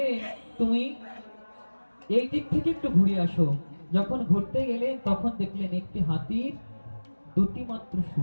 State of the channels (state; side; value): inverted; both; correlation -1.00